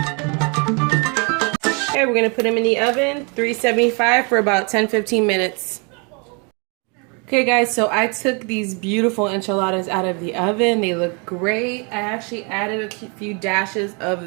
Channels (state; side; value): quieter; left; 33.6 dB